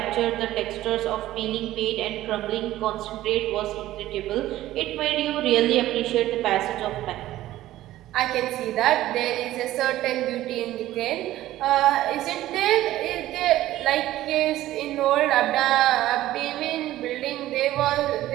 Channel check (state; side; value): quieter; left; 14.8 dB